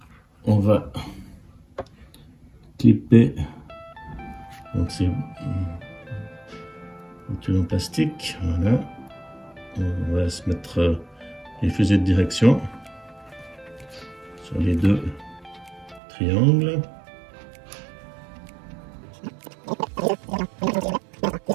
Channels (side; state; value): left; drops out; at 16.0 s